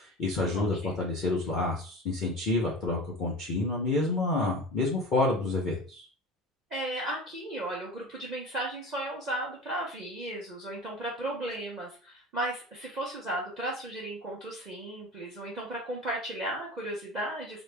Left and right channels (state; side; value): normal; both; correlation 0.34